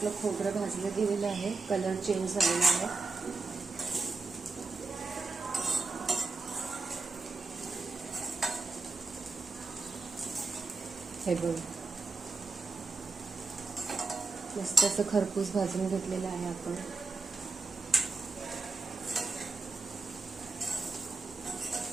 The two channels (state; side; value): quieter; left; 3.9 dB